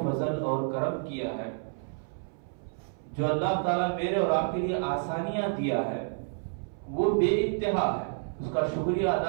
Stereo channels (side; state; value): left; silent; 58 dB below the other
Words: فضل اور کرم کیا ہے، جو اللہ تعالیٰ میرے اور آپ کے لیے آسانیاں دیا ہے، وہ بے انتہا ہے. اس کا شکریہ